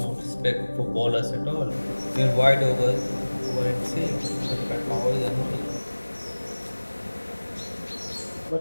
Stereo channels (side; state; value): both; inverted; correlation -1.00